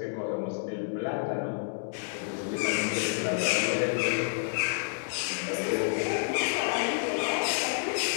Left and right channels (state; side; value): silent; right; digital silence